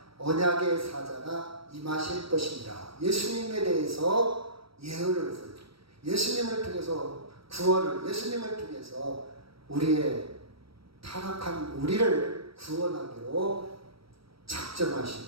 언약의 사자가 임하실 것입니다. 예수님에 대해서 예언을 했어요. 예수님을 통해서 구원을, 예수님을 통해서 우리의 타락한 우리를 구원하기로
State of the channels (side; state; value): left; late; 0.75 ms